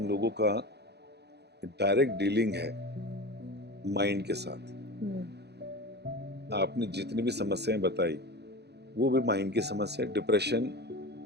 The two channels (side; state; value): left; late; 0.48 ms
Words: लोगों का डायरेक्ट डीलिंग है माइंड के साथ। आपने जितनी भी समस्याएं बताई वो भी माइंड की समस्या है। Depression